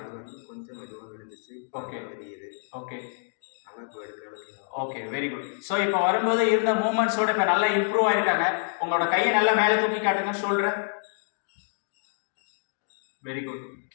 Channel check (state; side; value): silent; right; digital silence